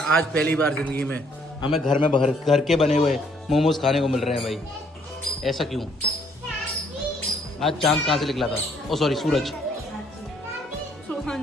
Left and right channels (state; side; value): normal; both; correlation 0.66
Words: पहली बार ज़िंदगी में हमें घर में घर के बने हुए मोमोज खाने को मिल रहे हैं भाई। ऐसा क्यों? आज चांद कहाँ से निकला था? ओ सॉरी, सूरज। हाँ